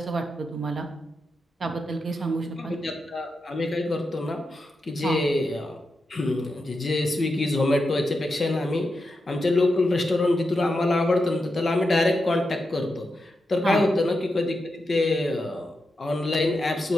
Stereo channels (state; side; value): normal; both; correlation 0.87